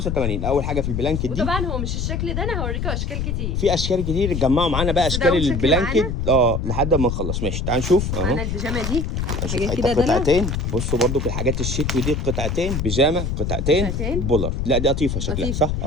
اول حاجه في البلانكت دي، وطبعا هو مش الشكل ده، انا هوريكم اشكال كتير. في اشكال كتير اتجمعوا معانا بقى، بس ده اشكال أول شكل البلانكت لحد ما نخلص. ماشي تعال نشوف اهو. معانا البيجامه دي هنشوف حاجات حته كده دلع. قطعتين. بصوا برضو في الحاجات الشتوي دي، قطعتين بيجامه، قطعتين بولر. لا دي قطيفه شكلها صح،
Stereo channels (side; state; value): left; noise; rumble, 2 dB below the sound